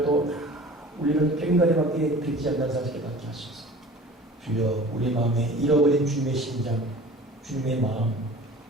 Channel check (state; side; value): normal; both; correlation 0.43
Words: 우리는 꽹과리밖에 듣지 않는 사실을 깨닫게 하소서. 주여 우리 마음에 잃어버린 주님의 심장, 주님의 마음,